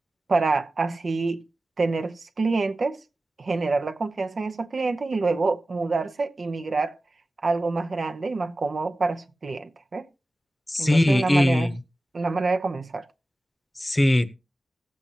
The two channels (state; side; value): normal; both; correlation 0.95